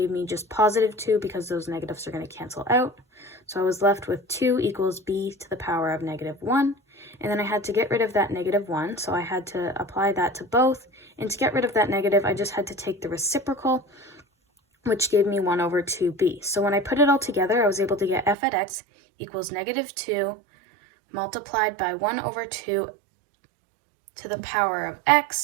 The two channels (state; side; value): drops out; left; at 18.4 s